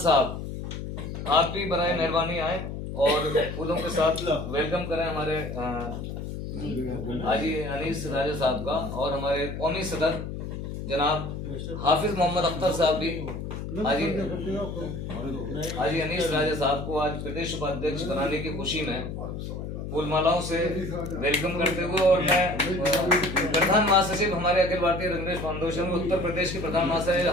आप भी बराए मेहरबानी आए और फूलों के साथ वेलकम करें हमारे हाजी अनीस राजा साहब का। और हमारे कौमी सदर जनाब हाफिज मोहम्मद अख्तर साहब भी हाजी अनीस राजा साहब को आज प्रदेश उपाध्यक्ष बनाने की खुशी में फूल मालाओं से वेलकम करते हुए, और मैं प्रधान महासचिव हमारे अखिल भारतीय रंगरेज फाउंडेशन उत्तर प्रदेश के प्रधान महासचिव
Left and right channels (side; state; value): left; noise; hum, 7 dB below the sound